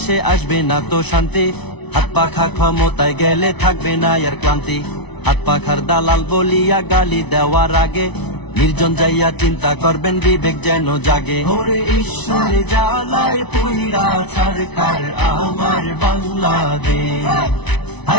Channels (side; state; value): right; late; 0.99 ms